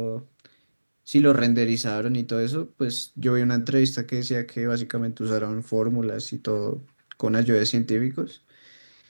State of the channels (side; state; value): both; inverted; correlation -1.00